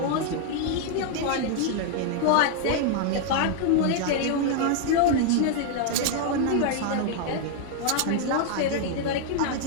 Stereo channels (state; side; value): different; both; correlation 0.00